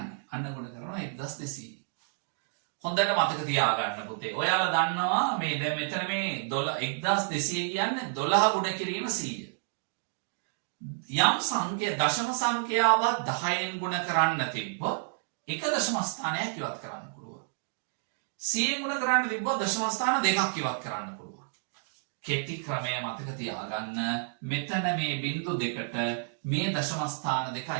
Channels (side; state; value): left; silent; digital silence